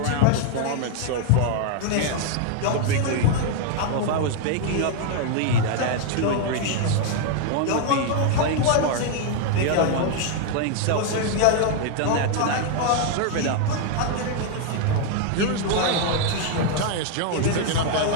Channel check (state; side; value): different; both; correlation 0.00